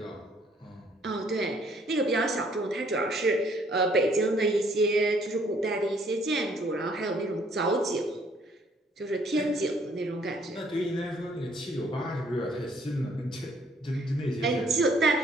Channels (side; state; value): both; normal; correlation 0.63